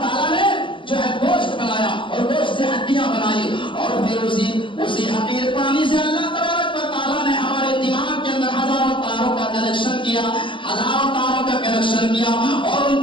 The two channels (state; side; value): late; right; 0.25 ms